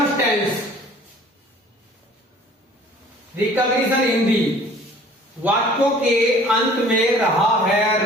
tense, recognition Hindi, वाक्यों के अंत में रहा है,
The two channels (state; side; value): normal; both; correlation 0.51